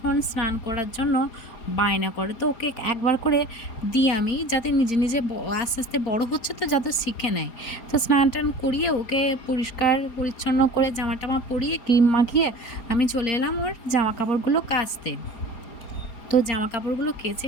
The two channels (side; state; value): right; late; 4.3 ms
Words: স্নান করার জন্য বায়না করে। তো ওকে একবার করে দিই আমি, যাতে নিজে নিজে আস্তে আস্তে বড় হচ্ছে তো যাতে শিখে নেয়। তো স্নান টান করিয়ে ওকে পরিষ্কার পরিচ্ছন্ন করে জামা টামা পরিয়ে ক্রিম মাখিয়ে আমি চলে এলাম ওর জামা কাপড়গুলো কাচতে। তো জামা কাপড়গুলো কেচে